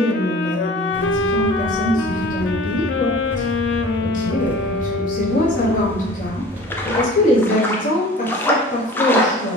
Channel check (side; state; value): both; normal; correlation 0.43